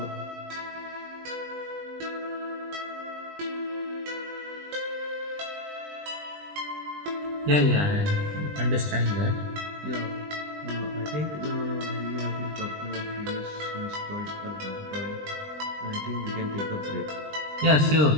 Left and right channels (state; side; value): late; left; 20 ms